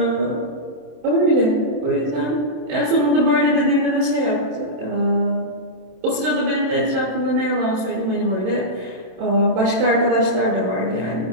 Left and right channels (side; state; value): left; late; 26 ms